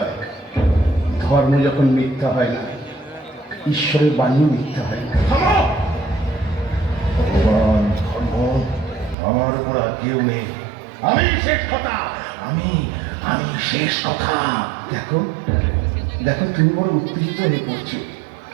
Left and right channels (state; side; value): drops out; left; at 9.2 s